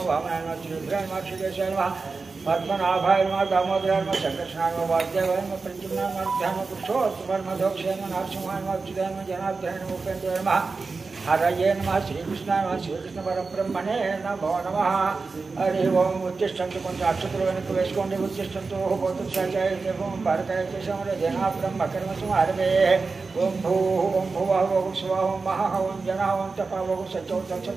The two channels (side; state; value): left; quieter; 4.2 dB